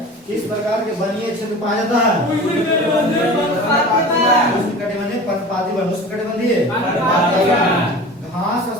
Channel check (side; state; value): both; normal; correlation 0.37